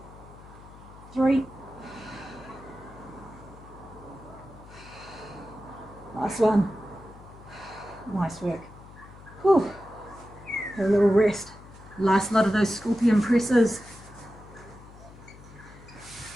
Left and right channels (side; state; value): left; noise; hum, 19 dB below the sound